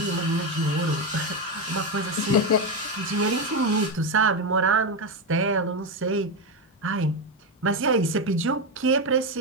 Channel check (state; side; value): normal; both; correlation 0.11